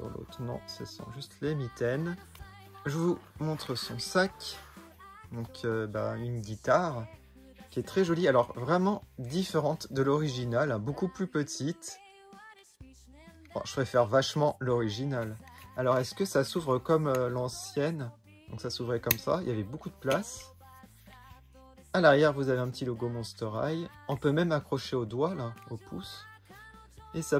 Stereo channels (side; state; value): both; identical; correlation 1.00